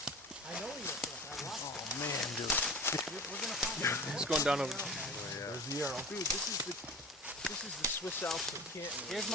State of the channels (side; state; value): both; normal; correlation 0.36